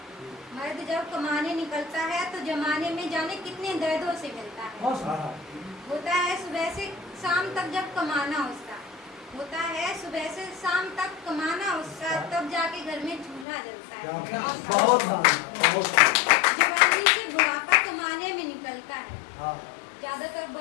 मर्द जब कमाने निकलता है तो जमाने में जाने कितने दर्दों से मिलता है। होता है सुबह से शाम तक जब कमाना उसका, होता है सुबह से शाम तक कमाना उसका, तब जाके घर में चूल्हा जलता है। जवानी से बुढ़ापा कमाने में निकलता है। ज्यादातर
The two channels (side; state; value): right; drops out; at 13.5 s